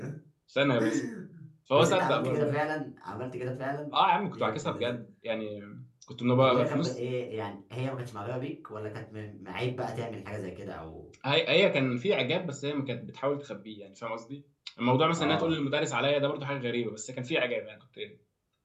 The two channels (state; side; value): identical; both; correlation 1.00